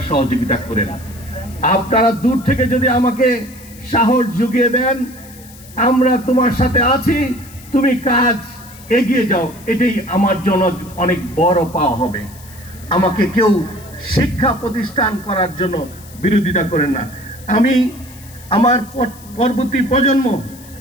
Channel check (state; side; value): noise; left; hiss, 21 dB below the sound